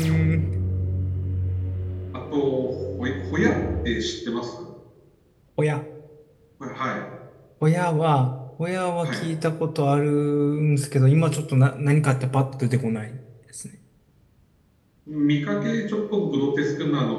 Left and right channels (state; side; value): identical; both; correlation 1.00